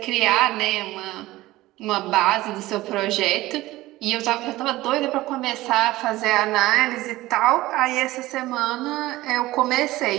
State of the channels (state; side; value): quieter; left; 17.8 dB